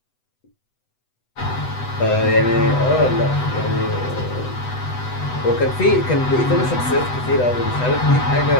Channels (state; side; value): late; right; 8.0 ms